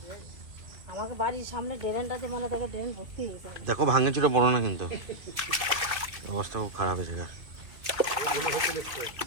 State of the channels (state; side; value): late; left; 2.4 ms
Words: আমাকে বাড়ির সামনে ড্রেনটাতে মানে দেখো ড্রেন ভর্তি হয়ে যায়। দেখো ভাঙে চুরে পড়ো না কিন্তু, অবস্থা খুব খারাপ হয়েছে। না